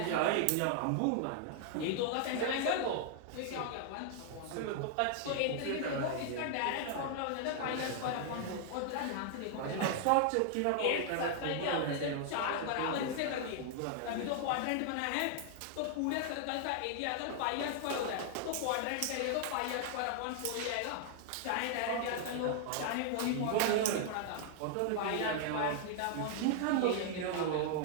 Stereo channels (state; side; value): different; both; correlation 0.00